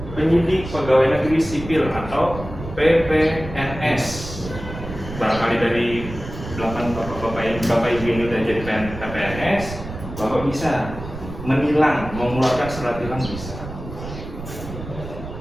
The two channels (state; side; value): noise; right; rumble, 10 dB below the sound